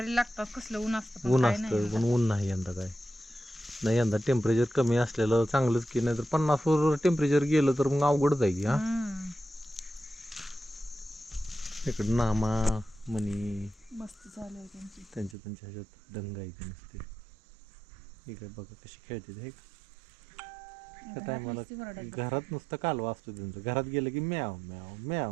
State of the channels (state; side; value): drops out; left; at 15.4 s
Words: लागतात कसलं ऊन असतं पण ऊन नाही यंदा काय नाही यंदा टेम्परेचर कमी असलेलं चांगलंच की नाही तर 50 वर टेम्परेचर गेलं तर मग अवघड जाईल हा इकडे नामा मनी मस्त चालू आहे त्यांची त्यांच्या ह्याच्यात दंग आहे ते नसते इकडे बघा कशी खेळते हे त्या टायमाला घरात नुसतं कालवा असतो त्यांचं घरात गेलं की म्याव म्याव